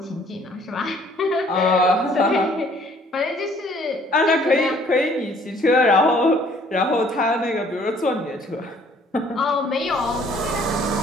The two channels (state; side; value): normal; both; correlation 0.59